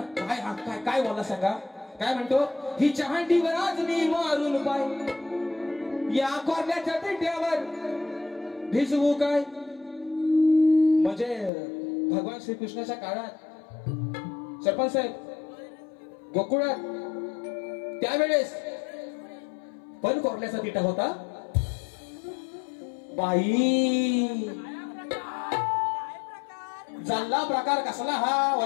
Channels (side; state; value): right; drops out; at 11.5 s